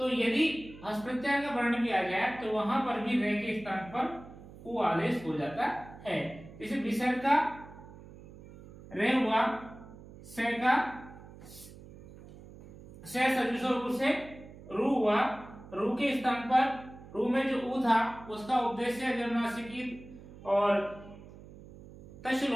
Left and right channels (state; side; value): noise; right; hum, 18 dB below the sound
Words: यदि हस प्रत्याहार का वर्ण भी आ जाए तो वहां पर भी रे के स्थान पर ऊ आदेश हो जाता है। जैसे विसर्ग का रे हुआ, से का से सजुषो से रू हुआ, रू के स्थान पर रू में जो ऊ था उसका उपदेश जन्मनासिकी और तश